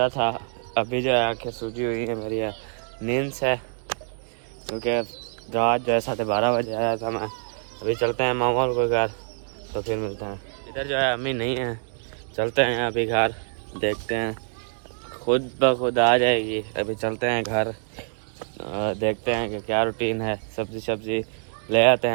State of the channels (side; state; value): left; silent; digital silence